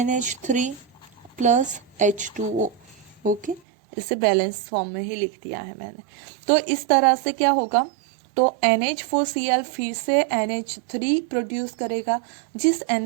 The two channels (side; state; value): left; drops out; at 3.6 s